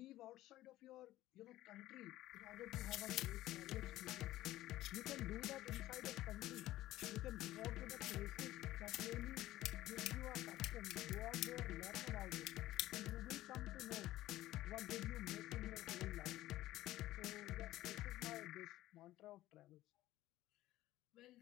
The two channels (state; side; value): quieter; right; 15.6 dB